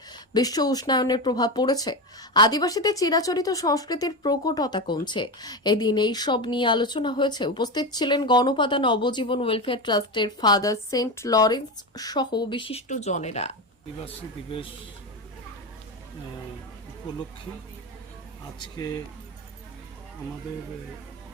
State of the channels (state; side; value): normal; both; correlation 0.18